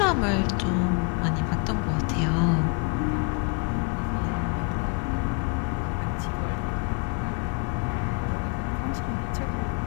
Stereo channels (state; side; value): quieter; right; 31.0 dB